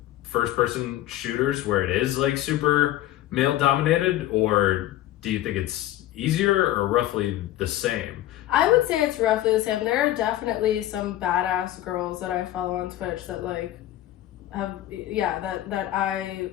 first-person shooters where it is, like, super male-dominated? Or do you think it's easier or roughly the same? I would say it's roughly the same. There are definitely some badass girls that I follow on Twitch that like have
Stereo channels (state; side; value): quieter; right; 14.2 dB